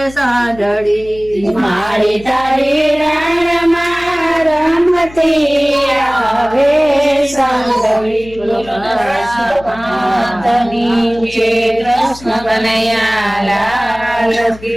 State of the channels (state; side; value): noise; left; hum, 19 dB below the sound